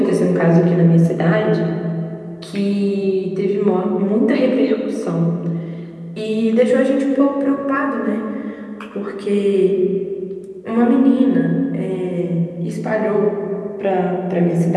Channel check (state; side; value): identical; both; correlation 1.00